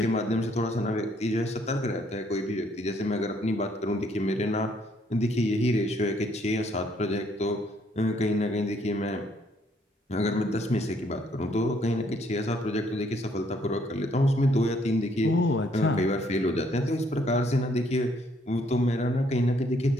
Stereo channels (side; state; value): both; normal; correlation 0.68